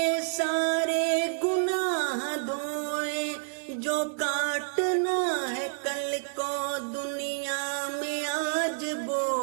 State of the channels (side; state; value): left; silent; 59 dB below the other